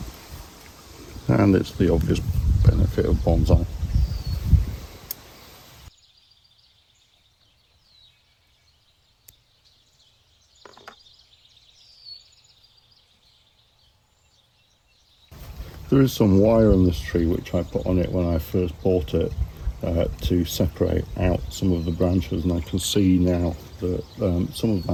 And it's the obvious benefit of bonsai. There is some wire on this tree which I put on it when I first bought it to separate out some of the branches, and I can see now that some of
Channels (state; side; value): identical; both; correlation 1.00